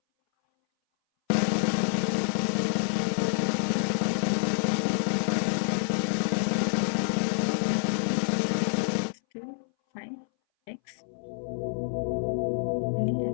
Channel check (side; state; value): right; silent; 60 dB below the other